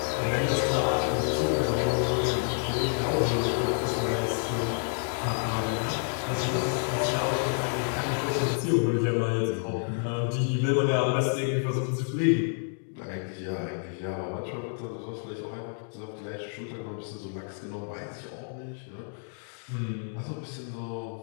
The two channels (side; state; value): right; silent; 59 dB below the other